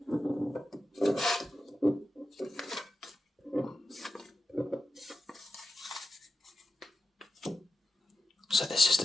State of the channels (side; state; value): both; normal; correlation 0.92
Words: So this is the